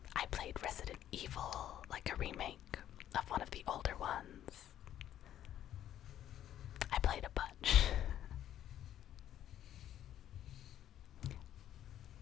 I played Resident Evil, like a remake of one of the older ones. I played a bunch.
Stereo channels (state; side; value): quieter; right; 11.4 dB